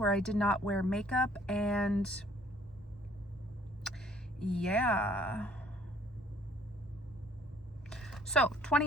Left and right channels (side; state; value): both; normal; correlation 0.59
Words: where I did not wear makeup, and yeah. So